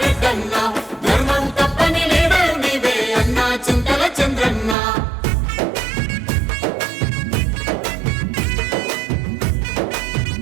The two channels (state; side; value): drops out; left; at 4.8 s